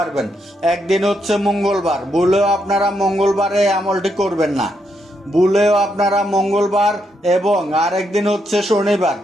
একদিন হচ্ছে মঙ্গলবার, ভুলেও আপনারা মঙ্গলবারে আমলটি করবেন না। ভুলেও আপনারা মঙ্গলবার এবং আরেকদিন হচ্ছে শনিবার।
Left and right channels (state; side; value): normal; both; correlation 0.79